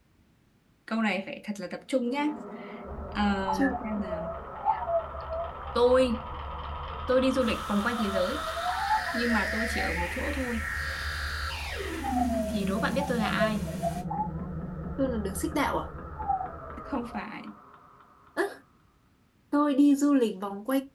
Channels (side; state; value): both; identical; correlation 1.00